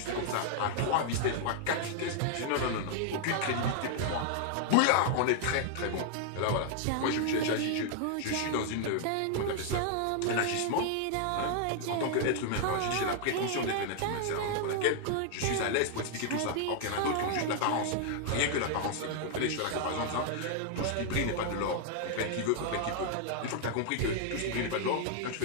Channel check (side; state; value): both; different; correlation 0.00